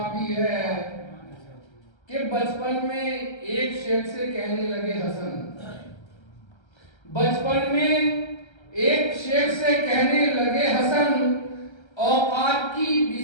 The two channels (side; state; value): right; late; 1.3 ms